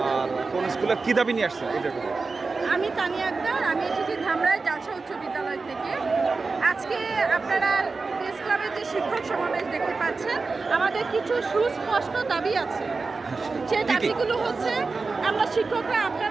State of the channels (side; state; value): left; quieter; 4.1 dB